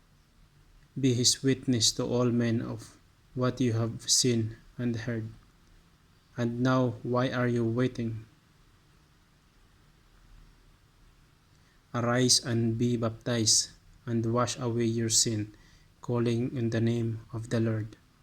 be his witness to all men of what you have seen and heard. And now, why are you waiting? Arise and be baptized, and wash away your sin, calling in the name of the Lord.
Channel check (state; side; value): identical; both; correlation 1.00